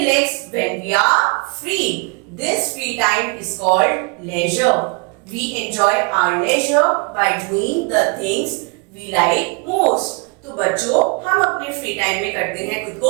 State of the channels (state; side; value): quieter; left; 32.4 dB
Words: when we are free. This free time is called leisure. We enjoy our leisure by doing the things we like most. तो बच्चों हम अपने फ्री टाइम में करते हैं खुद